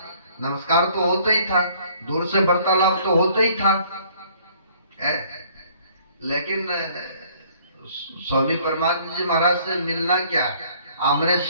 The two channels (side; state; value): both; inverted; correlation -0.59